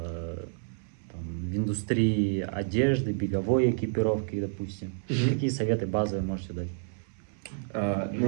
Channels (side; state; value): left; silent; 58 dB below the other